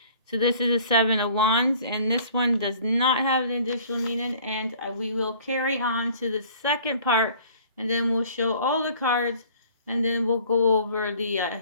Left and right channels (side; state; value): both; inverted; correlation -0.52